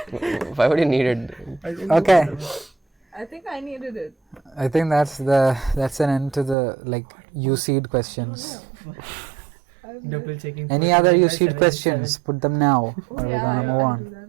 Why would you need it? Okay, I think I needed it. I think that's an end to the like UCEED questions. Double checking. Any other UCEED questions? Put them now, or we're gonna move I on. do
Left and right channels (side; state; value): left; drops out; at 6.6 s